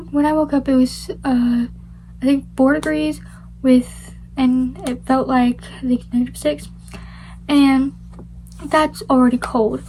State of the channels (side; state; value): both; identical; correlation 1.00